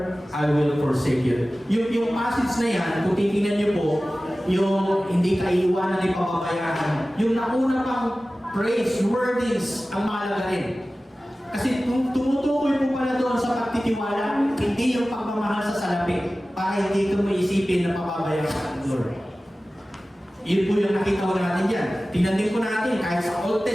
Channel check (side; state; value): both; normal; correlation 0.96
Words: I will forsake you. Yung passage na yan, kung titingnan niyo po, yung hindi ka iiwanan ni pababayaan, yung nauna pang praise, wordings, ang mahalaga rin. Kasi tumutukoy po pala doon sa pagtitiwala, hindi yung pagmamahal sa salapi, para hindi ko maisipin na pababayaan ng Lord. Yun po yung nakita ko natin dyan. Tingnan din po natin kahit sa Old